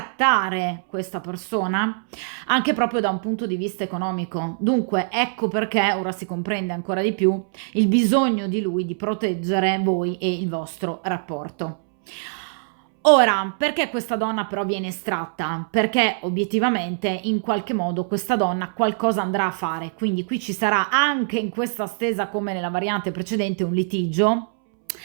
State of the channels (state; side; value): silent; left; 63 dB below the other